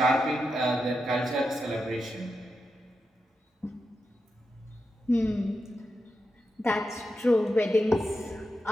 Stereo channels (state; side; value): normal; both; correlation 0.88